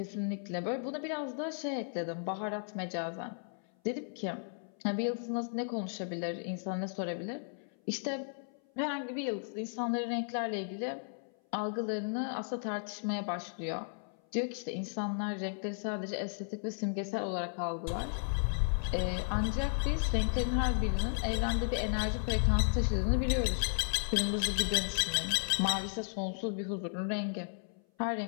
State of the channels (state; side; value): silent; right; 55 dB below the other